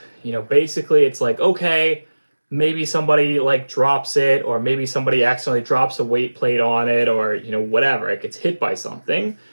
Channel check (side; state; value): both; inverted; correlation -1.00